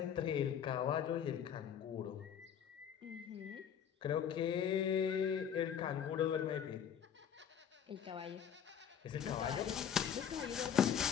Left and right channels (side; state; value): right; quieter; 8.5 dB